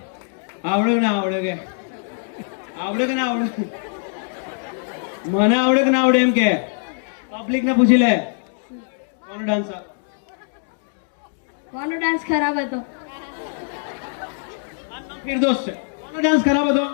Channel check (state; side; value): silent; right; 62 dB below the other